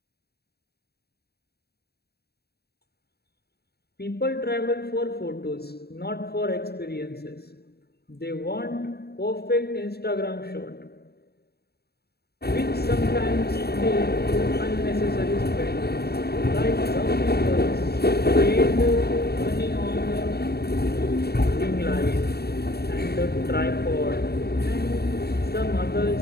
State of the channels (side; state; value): right; late; 0.47 ms